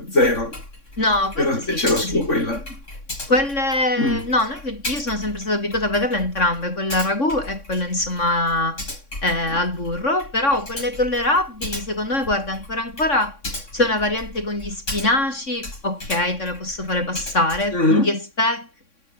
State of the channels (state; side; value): late; right; 3.6 ms